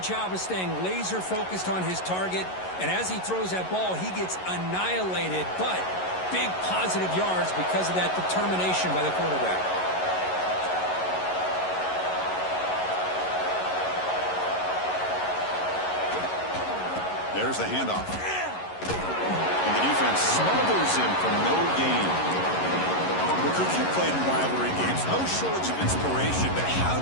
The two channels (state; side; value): late; right; 11 ms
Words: job of staying laser focused on his target, and as he throws that ball, he gets annihilated, but big positive yards because of that determination by the quarterback. There's the handoff. And the defense smothers him for no gain. Well, Coach, you played in rivalry games. No shortage of inspiration, but how